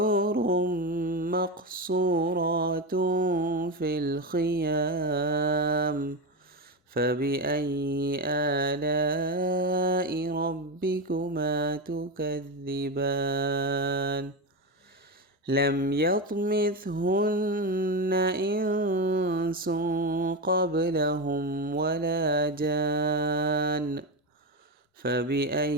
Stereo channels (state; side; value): normal; both; correlation 0.15